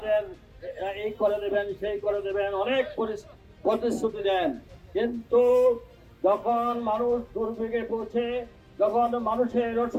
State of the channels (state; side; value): identical; both; correlation 1.00